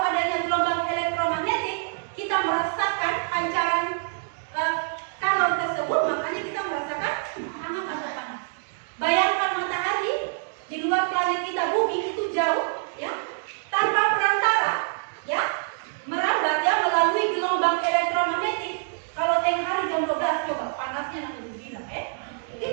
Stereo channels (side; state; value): left; silent; digital silence